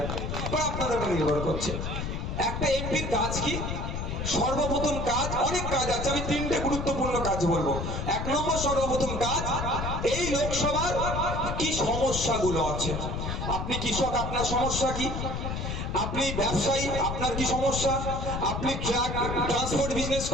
বা আপনাদের উপর নির্ভর করছে। একটা এমপির কাজ কি? সর্বপ্রথম কাজ, অনেক কাজ আছে, আমি 3টে গুরুত্বপূর্ণ কাজ বলবো। 1 নম্বর সর্বপ্রথম কাজ, এই লোকসভার কি সমস্যাগুলো আছে। আপনি কৃষক, আপনার সমস্যা কি? আপনি ব্যবসায়ী, আপনার কি সমস্যা? আপনি ট্রাক ট্রান্সপোর্ট বিজনেস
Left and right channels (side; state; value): left; noise; rumble, 3 dB below the sound